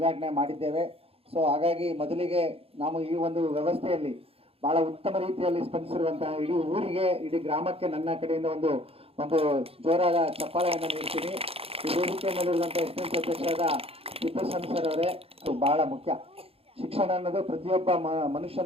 ಮಾಡಿದ್ದೇವೆ. ಸೊ ಹಾಗಾಗಿ ಮೊದಲಿಗೆ ನಾವು ಈ ಒಂದು ವ್ಯವಸ್ಥೆಯಲ್ಲಿ ಬಹಳ ಉತ್ತಮ ರೀತಿಯಲ್ಲಿ ಸ್ಪಂದಿಸಿರುವಂತಹ ಇಡೀ ಊರಿಗೆ, ಇಡೀ ಗ್ರಾಮಕ್ಕೆ ನನ್ನ ಕಡೆಯಿಂದ ಒಂದು ಜೋರಾದ ಚಪ್ಪಾಳೆಯನ್ನು ನೀಡ್ತೀನಿ. ಈ ವೇದಿಕೆ ಮೇಲಿರುವಂತಹ ಎಸ್ಎನ್ಸಿ ಅಧ್ಯಕ್ಷರಾದ ತಿಪ್ಪೇಸ್ವಾಮಿ ಸರ್ ಅವರೇ, ಬಹಳ ಮುಖ್ಯ. ಶಿಕ್ಷಣ ಅನ್ನೋದು ಪ್ರತಿಯೊಬ್ಬ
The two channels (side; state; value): left; late; 0.28 ms